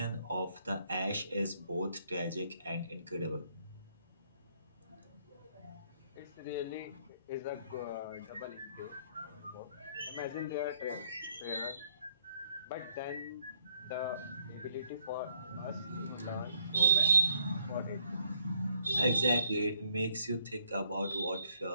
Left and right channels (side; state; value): both; inverted; correlation -0.69